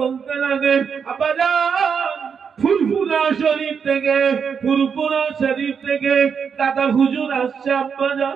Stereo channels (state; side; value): quieter; left; 6.6 dB